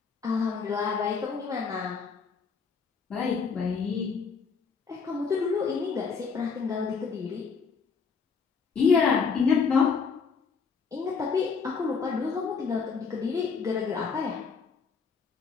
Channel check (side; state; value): right; quieter; 5.5 dB